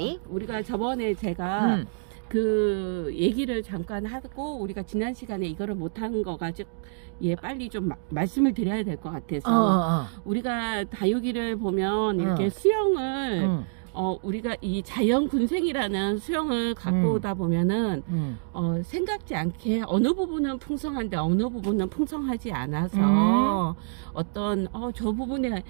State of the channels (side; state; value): left; silent; digital silence